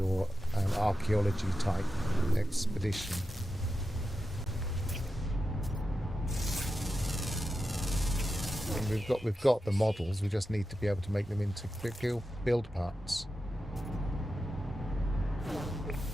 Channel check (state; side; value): normal; both; correlation 0.90